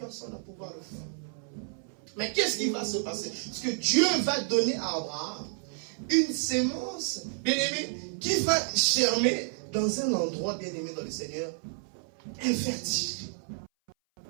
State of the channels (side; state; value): left; silent; 57 dB below the other